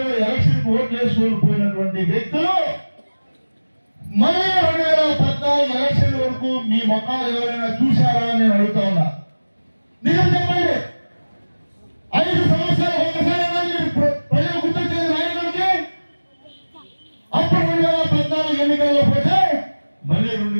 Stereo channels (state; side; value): inverted; both; correlation -1.00